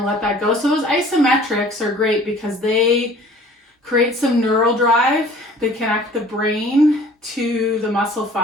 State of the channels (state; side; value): normal; both; correlation 0.50